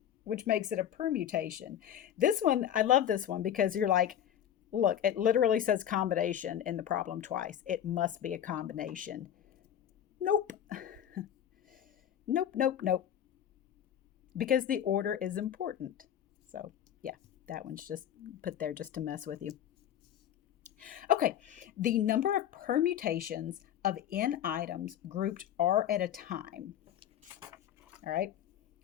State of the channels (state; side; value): quieter; right; 10.2 dB